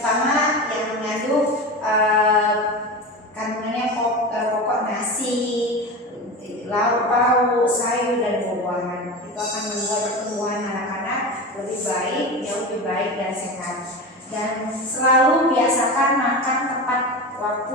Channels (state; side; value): normal; both; correlation 0.26